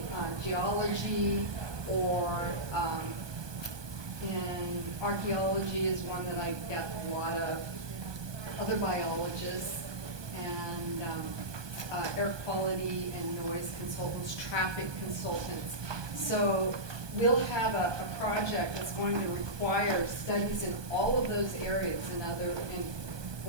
geology, or in archaeology is one that I get a lot of, other biologists, and air quality and noise consultants, traffic consultants. So we'll have a project that's going to require studies in all of those areas in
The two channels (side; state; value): left; late; 1.2 ms